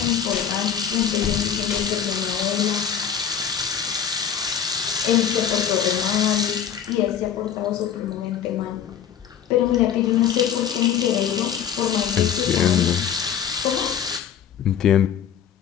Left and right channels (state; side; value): quieter; right; 8.5 dB